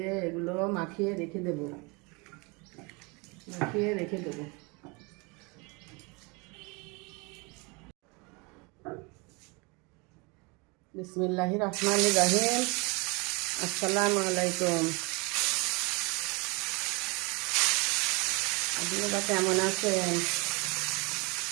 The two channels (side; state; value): left; quieter; 28.8 dB